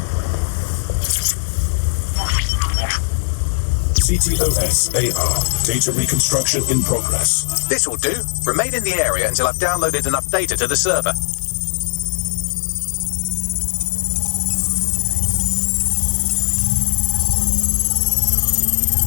CTOS AR. Data reconstruction in progress. This will do. Remain in the area until I've downloaded enough data to the server.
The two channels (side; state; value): right; silent; digital silence